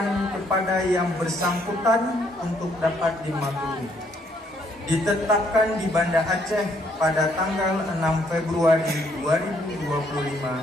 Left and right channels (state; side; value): normal; both; correlation 0.69